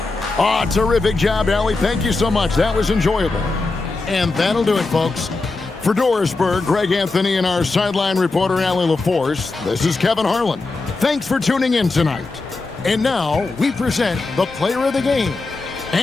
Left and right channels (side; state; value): right; quieter; 3.6 dB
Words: Oh, terrific job, Allie. Thank you so much. That was enjoyable. And that'll do it, folks. For Dorisburg, Greg Anthony and our sideline reporter, Allie LaForce, this is Kevin Harlan. Thanks for tuning in tonight. And now we present the player of the game,